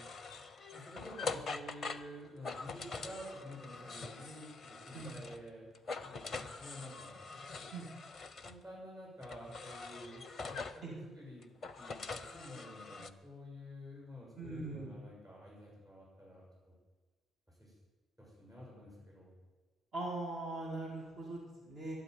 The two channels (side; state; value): both; normal; correlation 0.71